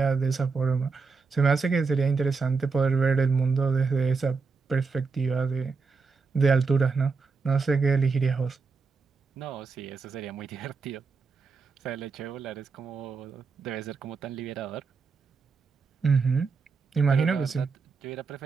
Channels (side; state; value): left; quieter; 4.7 dB